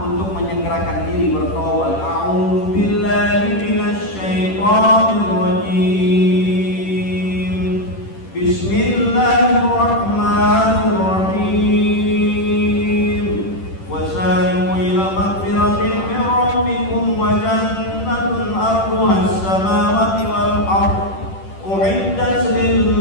untuk menyegerakan diri bertobat. A'udzu billahi minasyaitonir rajim. Bismillahirrahmanirrahim. Wasari'u ila maghfiratin min rabbikum wa jannatun 'arduha as-samawati wal ardh u'iddat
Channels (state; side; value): late; right; 10 ms